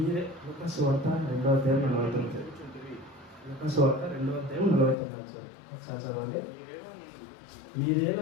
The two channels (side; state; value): right; drops out; at 5.0 s